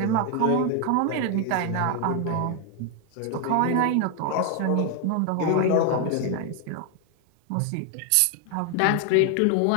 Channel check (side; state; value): both; different; correlation 0.00